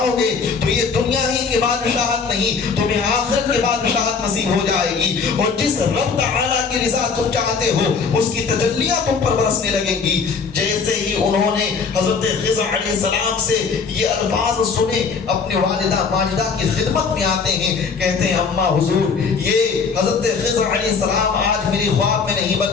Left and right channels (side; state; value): right; quieter; 5.3 dB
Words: گے تو یہ دنیا ہی کی بادشاہت نہیں تمہیں آخرت کی بادشاہت نصیب ہو جائے گی اور جس رب تعالیٰ کی رضا تم چاہتے ہو اس کی تجلیاں تم پر برسنے لگیں گی. جیسے ہی انہوں نے حضرت خضر علیہ السلام سے یہ الفاظ سنے اپنی والدہ ماجدہ کی خدمت میں آتے ہیں. کہتے ہیں اماں حضور یہ حضرت خضر علیہ السلام آج میری خواب میں نہیں